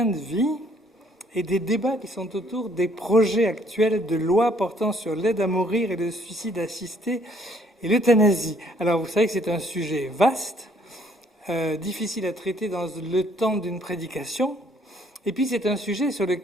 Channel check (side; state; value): both; normal; correlation 0.63